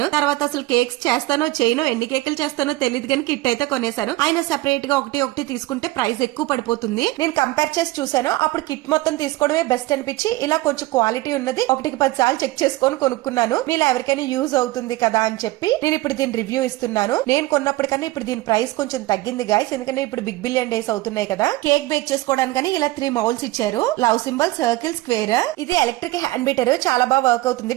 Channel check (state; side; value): quieter; left; 18.9 dB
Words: తర్వాత అసలు కేక్స్ చేస్తానో చేయనో, ఎన్ని కేకులు చేస్తానో తెలియదు కానీ కిట్ అయితే కొనేసాను. ఆయన సెపరేట్ గా ఒకటి తీసుకుంటే ప్రైస్ ఎక్కువ పడిపోతుంది. నేను కంపేర్ చేసి చూసాను, అప్పుడు కిట్ మొత్తం తీసుకోవడమే బెస్ట్ అనిపించి ఇలా కొంచెం క్వాలిటీ ఉన్నది 1-10 సార్లు చెక్ చేసుకొని కొనుక్కున్నాను. మీరు ఎవరికైనా యూజ్ అవుతుంది కదా అని చెప్పి నేను ఇప్పుడు దీని రివ్యూ ఇస్తున్నాను. నేను కొన్నప్పటికన్నా ఇప్పుడు దీని ప్రైస్ కొంచెం తగ్గింది గైస్, ఎందుకంటే ఇప్పుడు బిగ్ బిలియన్ డేస్ అవుతున్నాయి కదా. కేక్ బేక్ చేసుకోవడానికి ఇలా 3 మౌల్స్ ఇచ్చారు. Love symbol, circle, square. ఇది ఎలక్ట్రిక్ హ్యాండ్ బీటర్, చాలా బాగా వర్క్ అవుతుంది,